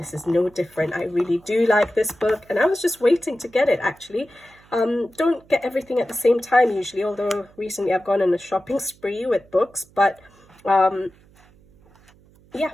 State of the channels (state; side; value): noise; right; hum, 29 dB below the sound